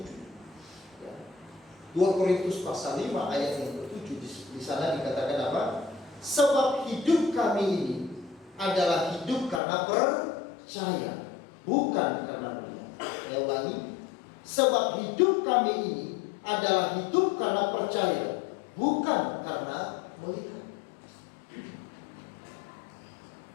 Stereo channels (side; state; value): right; drops out; at 9.6 s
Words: 2 Korintus pasal 5 ayat yang ke-7, di sana dikatakan apa? Sebab hidup kami ini adalah hidup karena percaya, bukan karena melihat. Saya ulangi, sebab hidup kami ini adalah hidup karena percaya, bukan karena melihat.